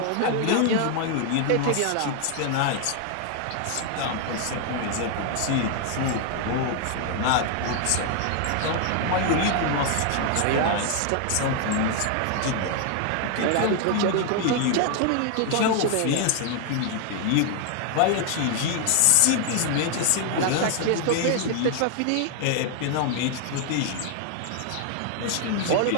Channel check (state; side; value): different; both; correlation 0.00